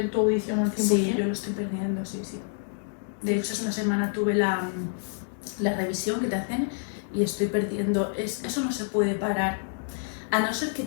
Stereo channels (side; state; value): right; silent; digital silence